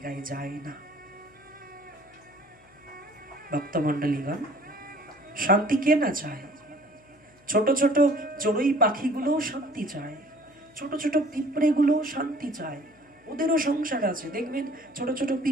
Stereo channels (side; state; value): left; noise; hum, 29 dB below the sound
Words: যায় না। ভক্তমণ্ডলীগণ, শান্তি কে না চায়? ছোট ছোট চড়ুই পাখিগুলোও শান্তি চায়, ছোট ছোট পিঁপড়েগুলোও শান্তি চায়, ওদেরও সংসার আছে। দেখবেন ছোট ছোট